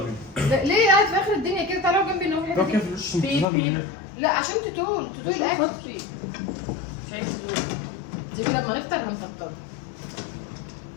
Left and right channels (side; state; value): right; drops out; at 3.5 s